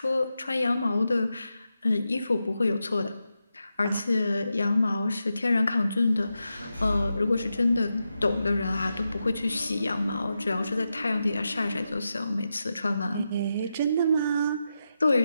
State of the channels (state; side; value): inverted; both; correlation -0.88